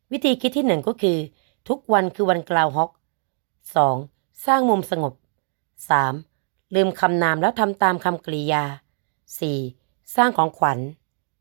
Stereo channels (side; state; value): left; silent; digital silence